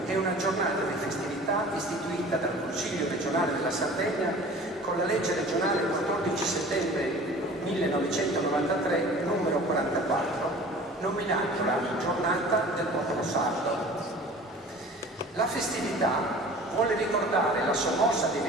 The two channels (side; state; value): both; normal; correlation 0.43